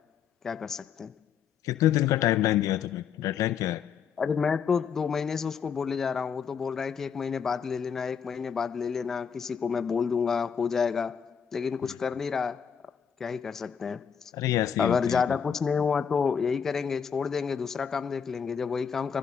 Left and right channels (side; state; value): right; quieter; 7.2 dB